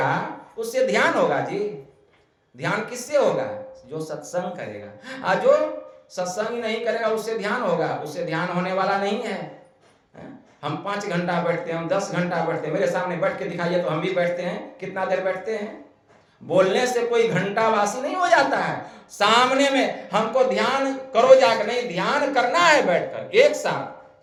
उससे ध्यान होगा जी। ध्यान किससे होगा? जो सत्संग करेगा। और जो सत्संग नहीं करेगा उससे ध्यान होगा? उससे ध्यान होने वाला नहीं है। हम 5 घंटा बैठते हैं, हम 10 घंटा बैठते हैं, मेरे सामने बैठ के दिखाइए तो हम भी बैठते हैं। कितना देर बैठते हैं? बोलने से कोई घंटा वासी नहीं हो जाता है। सामने में हमको ध्यान करो जाकर, नहीं ध्यान करना है बैठकर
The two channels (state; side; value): identical; both; correlation 1.00